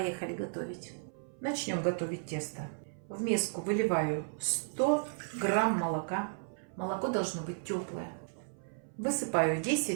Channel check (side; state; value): left; silent; 55 dB below the other